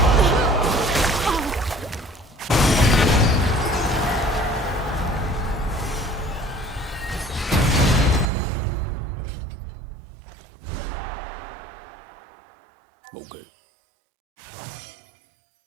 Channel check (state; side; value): drops out; left; at 8.3 s